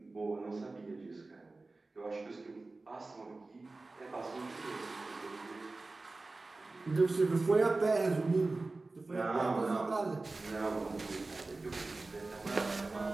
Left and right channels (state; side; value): quieter; left; 3.4 dB